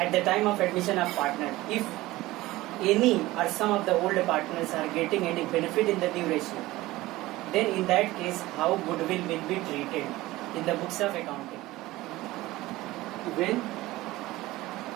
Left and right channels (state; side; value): quieter; left; 18.2 dB